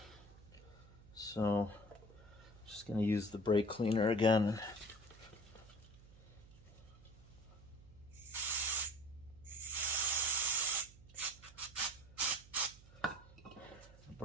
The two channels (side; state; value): right; noise; hum, 21 dB below the sound